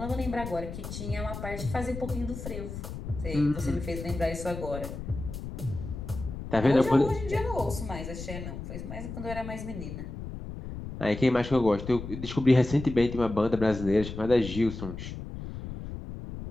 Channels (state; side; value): noise; left; rumble, 8 dB below the sound